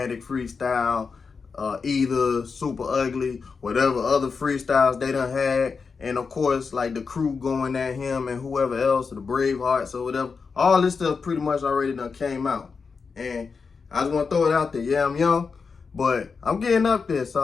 freestyle, either Super Ugly, whatever other freestyles they done had. And of course, like the crew going at him and whoever else, the Bravehearts or whatever. All this stuff pretty much already done came out. And I just want to throw it out there. Yeah, I'm young, but I'm getting up there. So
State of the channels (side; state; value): right; quieter; 5.2 dB